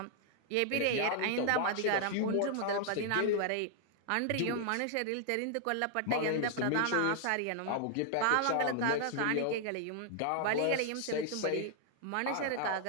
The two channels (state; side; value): different; both; correlation 0.00